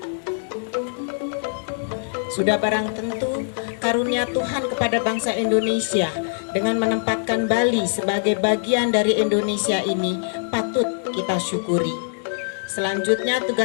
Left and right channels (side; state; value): right; silent; digital silence